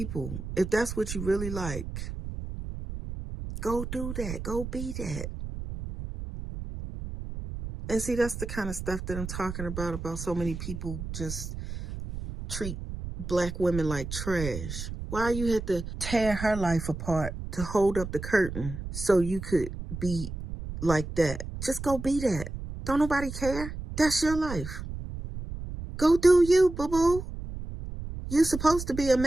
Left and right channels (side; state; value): right; noise; rumble, 8 dB below the sound